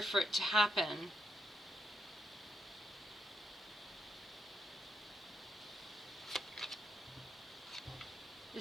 for it to happen. The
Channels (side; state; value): both; normal; correlation 0.80